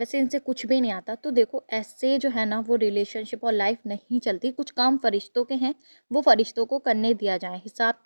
इनसे कुछ भी नहीं आता। तो देखो, ऐसे जो है ना वो रिलेशनशिप और लाइफ नहीं चलती। कुछ काम फ़रिश्तों के हैं, वो फ़रिश्तों को करने दिया जाए।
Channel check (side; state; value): both; inverted; correlation -1.00